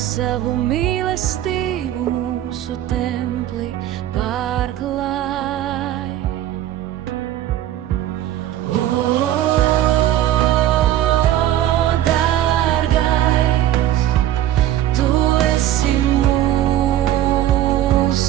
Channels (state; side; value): quieter; left; 12.6 dB